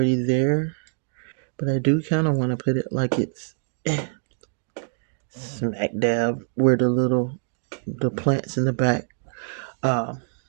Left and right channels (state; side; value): silent; left; 61 dB below the other